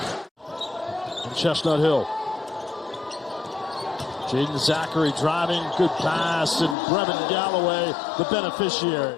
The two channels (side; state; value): right; drops out; at 6.8 s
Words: And Chestnut Hill. Jaden Zachary driving, good pass, and Brevin Galloway, the